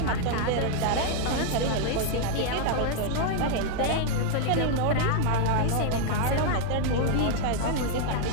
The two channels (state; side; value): different; both; correlation 0.00